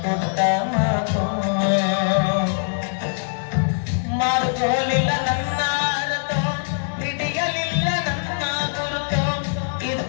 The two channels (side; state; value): right; silent; digital silence